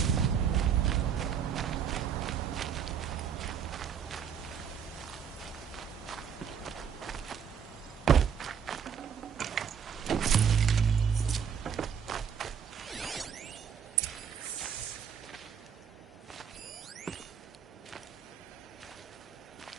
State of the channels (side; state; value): left; quieter; 7.5 dB